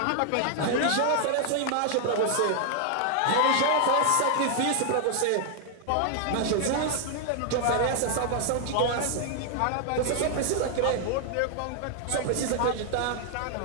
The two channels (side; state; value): both; different; correlation 0.00